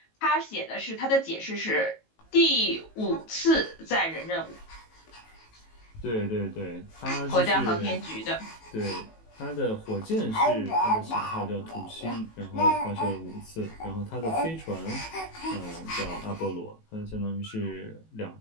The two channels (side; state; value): right; late; 18 ms